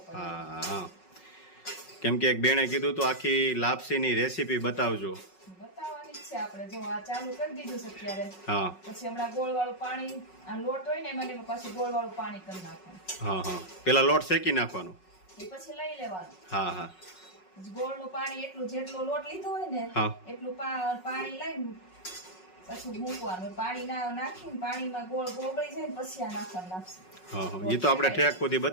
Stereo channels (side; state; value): right; late; 5.4 ms